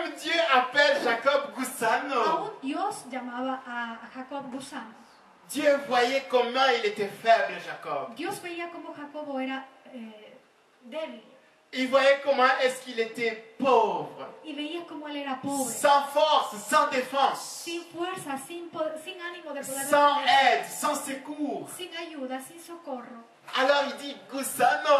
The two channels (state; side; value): identical; both; correlation 1.00